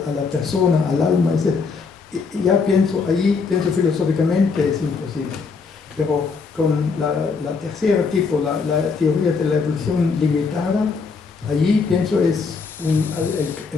a la persona, al alma, etc. Y ya pienso filosóficamente es imposible. Pero con la tercera tipo, la teoría de la evolución limitada, allí pienso es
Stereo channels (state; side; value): quieter; right; 4.9 dB